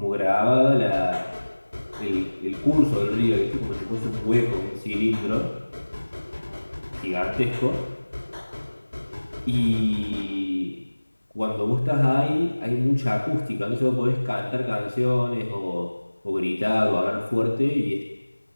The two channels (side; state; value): both; inverted; correlation -1.00